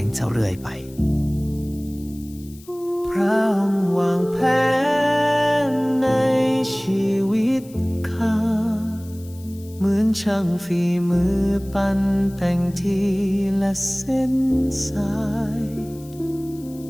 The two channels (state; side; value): noise; left; hiss, 23 dB below the sound